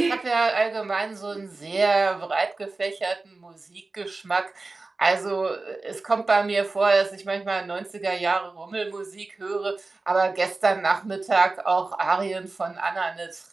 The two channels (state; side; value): quieter; left; 3.6 dB